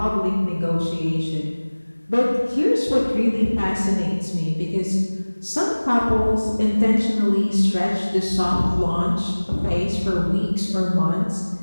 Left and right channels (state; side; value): inverted; both; correlation -1.00